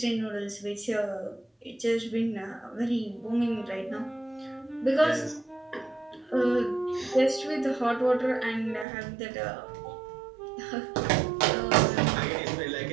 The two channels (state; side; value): drops out; left; at 8.8 s